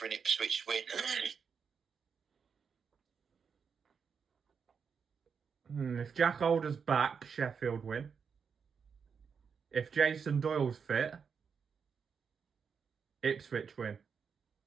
an Ipswich win? If Jack Alder's back, Sheffield win. If Jason Doyle's fit, Ipswich win.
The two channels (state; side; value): quieter; left; 6.2 dB